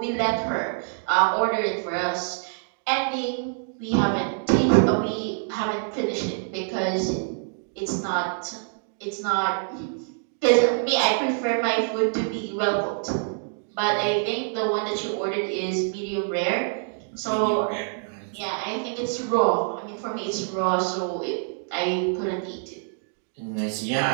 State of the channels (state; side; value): silent; left; digital silence